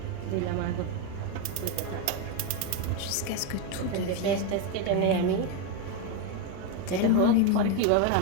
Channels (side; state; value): both; different; correlation 0.02